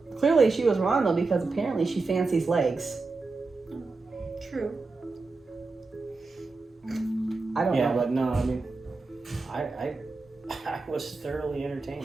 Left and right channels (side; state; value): left; quieter; 3.8 dB